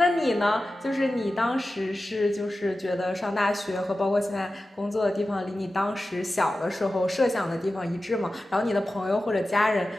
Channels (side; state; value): both; normal; correlation 0.94